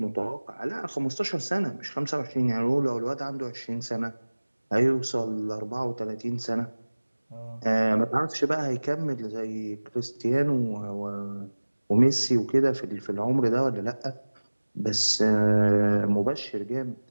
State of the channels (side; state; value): both; inverted; correlation -1.00